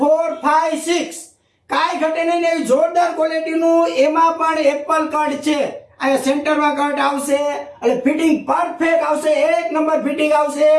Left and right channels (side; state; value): both; identical; correlation 1.00